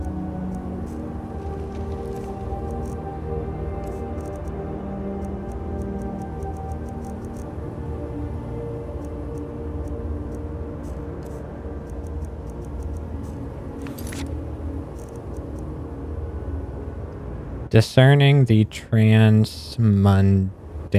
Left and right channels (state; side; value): identical; both; correlation 1.00